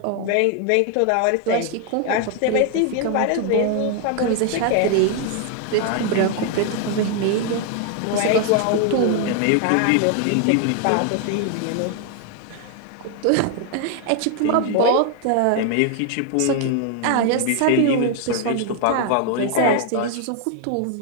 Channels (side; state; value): both; different; correlation 0.00